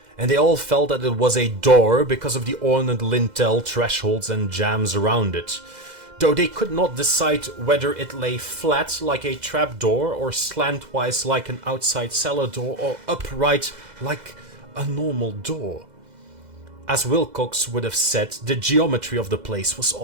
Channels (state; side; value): late; left; 2.0 ms